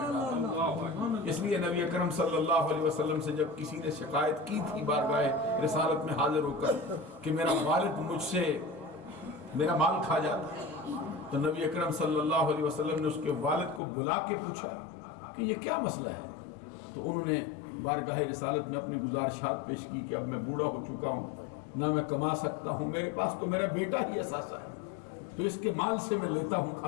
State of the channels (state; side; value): drops out; right; at 13.8 s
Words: ڈالا۔ اس لیے نبی اکرم صلی اللہ علیہ وسلم سے جب کسی نے شکایت کی تھی بارگاہ رسالت میں حاضر ہو کر کہ میرا والد مجھ سے میرا مال کھا جاتا، تو نبی اکرم صلی اللہ علیہ وسلم نے اس کے والد کو بلا کے پوچھا کہ یہ کیا مسئلہ ہے؟ تو انہوں نے بارگاہ رسالت میں اپنی گزارشات پیش کی کہ اب میں بوڑھا ہو چکا ہوں، نہ میں کما سکتا ہوں، میرے پاس تو میرا بیٹا ہی اثاثہ ہے، تو اس کے مال سے میں لیتا ہوں